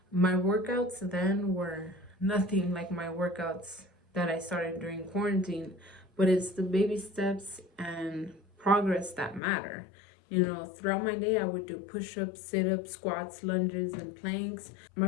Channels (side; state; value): right; drops out; at 9.4 s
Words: my workouts then were nothing like my workouts that I started during quarantine, but it's the baby steps and progress that matter. Throughout my day, I would do push ups, sit ups, squats, lunges, and planks.